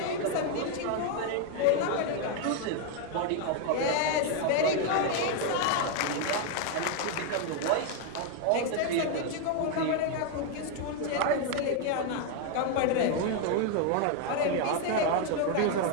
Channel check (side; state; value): both; different; correlation 0.01